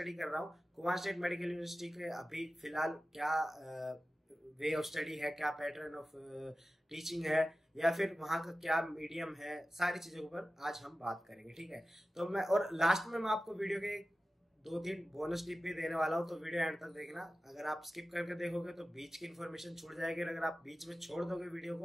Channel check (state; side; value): normal; both; correlation 0.95